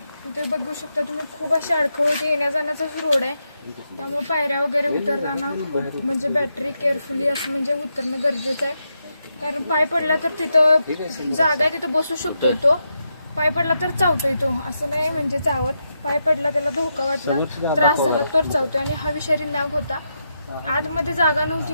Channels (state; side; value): inverted; both; correlation -0.84